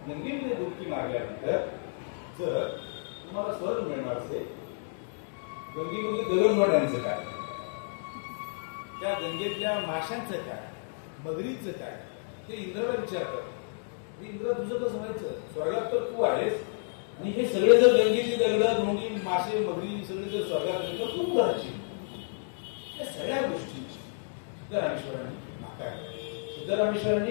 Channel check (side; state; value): right; silent; digital silence